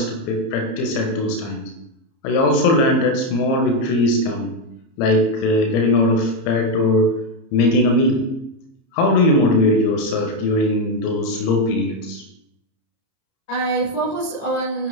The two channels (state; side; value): late; right; 30 ms